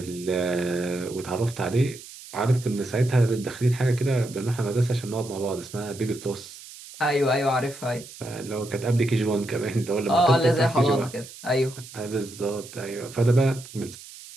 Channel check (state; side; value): noise; right; hiss, 16 dB below the sound